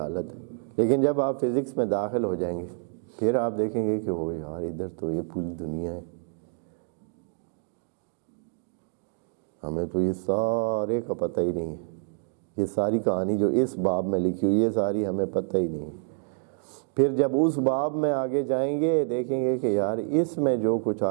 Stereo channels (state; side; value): silent; left; 55 dB below the other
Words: ہے، لیکن جب آپ فزکس میں داخل ہو جائیں گے پھر آپ دیکھیں گے کہ وہ یار ادھر تو یہ پوری دنیا ہے، ہمیں تو یہ سارے کا پتہ ہی نہیں ہے، یہ ساری کہانی جو اس باب میں لکھی ہوئی ہے، یہ ساری ہمیں پتہ ہی نہیں ہے۔ پھر جب اس باب میں آگے جائیں گے دیکھیں گے کہ یار اس میں جو کچھ